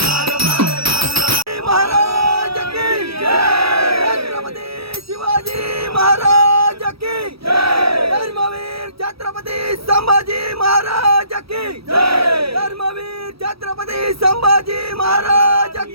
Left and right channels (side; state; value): left; late; 0.76 ms